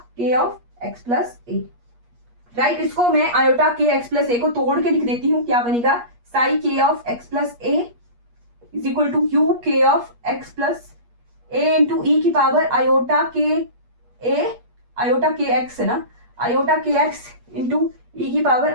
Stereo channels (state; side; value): late; left; 8.4 ms